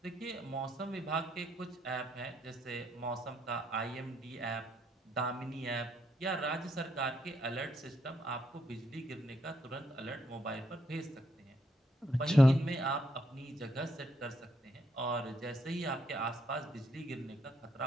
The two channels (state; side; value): normal; both; correlation 0.75